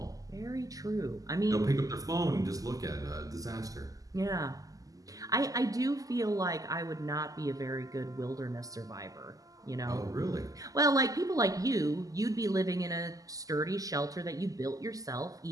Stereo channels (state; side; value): late; left; 0.17 ms